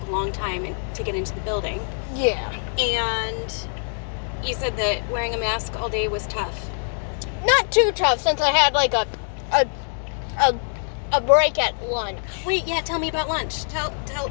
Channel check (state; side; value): silent; right; digital silence